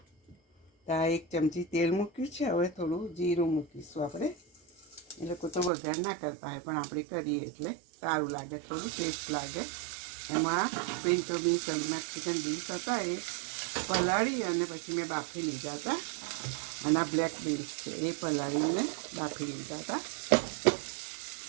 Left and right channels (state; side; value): drops out; left; at 5.7 s